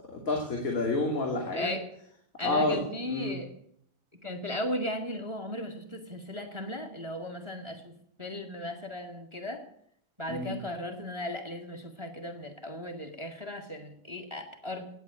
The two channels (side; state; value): left; late; 1.4 ms